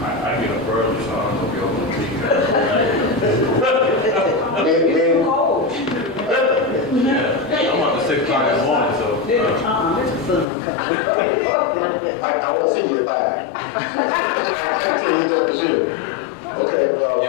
I get up early, so I don't know if you'll Men, Cold. Yeah, I'm up to 6 o'clock in the morning, so. I won't see you at 5. I can't tell you that for sure. Okay, well.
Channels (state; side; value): drops out; right; at 10.5 s